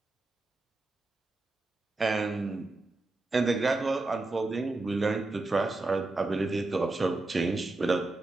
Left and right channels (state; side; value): quieter; left; 3.1 dB